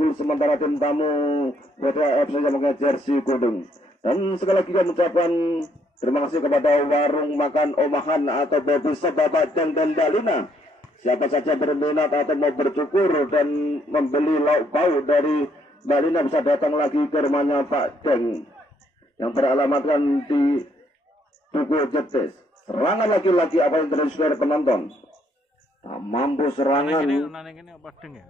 sementara tim tamu Podcast FC yang memakai jersey kuning. Dan sekali lagi kami ucapkan terima kasih kepada warung makan Omahan atau Baby Bapak dan Dalina. Siapa saja berminat atau mau bercukur dan membeli lauk pauk dari Dalina bisa datang lagi ke rumahnya Pak Deng yang beralamatkan di Tugu Jetis. Serangan lagi-lagi apa yang terjadi saudara penonton? Tak mampu serangan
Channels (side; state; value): both; normal; correlation 0.70